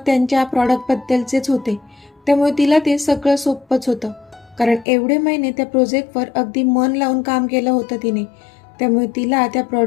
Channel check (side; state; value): right; drops out; at 4.9 s